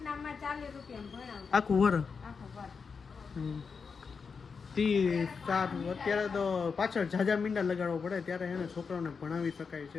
આખું વર. અત્યારે તો પાછળ ઝાઝા મીંડા લગાડવો પડે ત્યારે એને છોકરાઓને ભણાવી શકાય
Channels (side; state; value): right; quieter; 5.4 dB